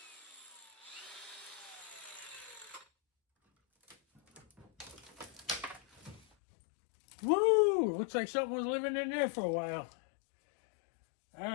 Woo! Looks like something was living in there for a while.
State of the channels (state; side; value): drops out; right; at 6.2 s